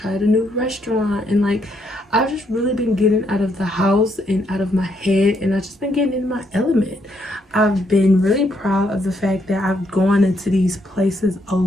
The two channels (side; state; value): both; normal; correlation 0.74